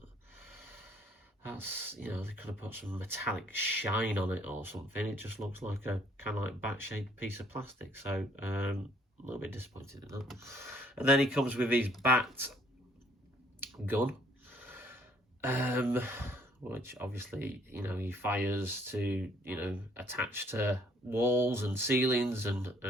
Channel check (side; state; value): both; normal; correlation 0.63